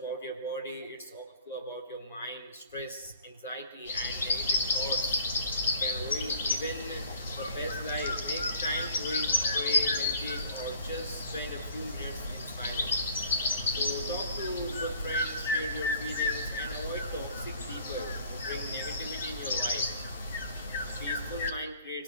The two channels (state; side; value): inverted; both; correlation -0.55